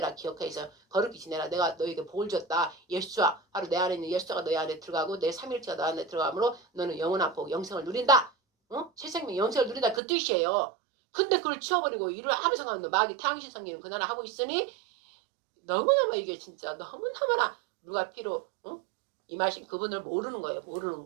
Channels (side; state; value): left; drops out; at 10.0 s